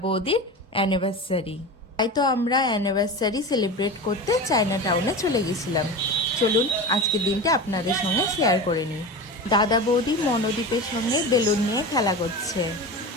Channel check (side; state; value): both; normal; correlation 0.28